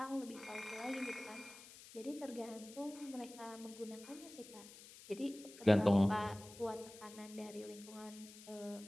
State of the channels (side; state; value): left; noise; hiss, 17 dB below the sound